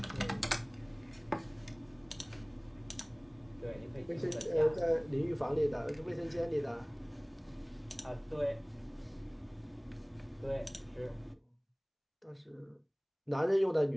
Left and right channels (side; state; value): both; identical; correlation 1.00